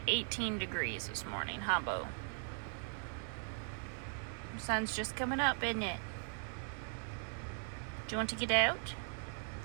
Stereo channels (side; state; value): left; silent; 51 dB below the other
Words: 18 degrees this morning, huh, Bo? The sun's just coming up, isn't it? Do you want to get out?